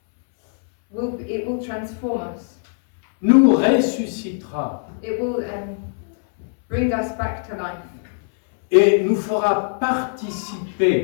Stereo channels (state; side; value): silent; right; 65 dB below the other